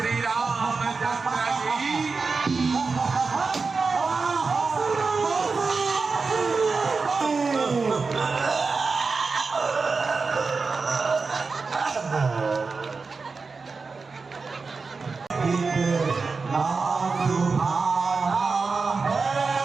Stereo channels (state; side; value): quieter; left; 4.4 dB